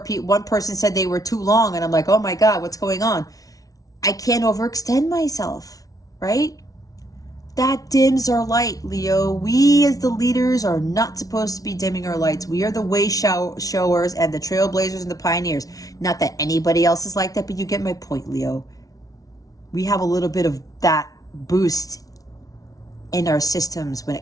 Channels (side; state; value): right; late; 0.18 ms